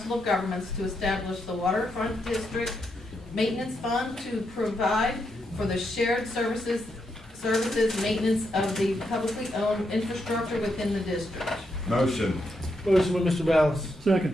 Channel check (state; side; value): normal; both; correlation 0.81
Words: of Governments to establish the Waterfront District Maintenance Fund to provide for the shared services maintenance of the publicly owned infrastructure within the district. Motion. Motion by Mr. Ballas.